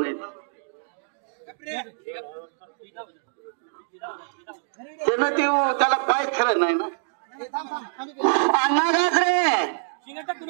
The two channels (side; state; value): left; silent; digital silence